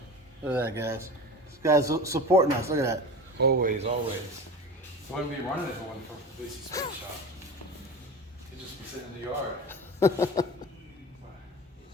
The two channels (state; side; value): normal; both; correlation 0.32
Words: Look at that, guys. This guy's supporting us. Look at that. Always, always. Wouldn't be running if it wasn't for Pugliese Space Shop. It'd just be sitting in the yard.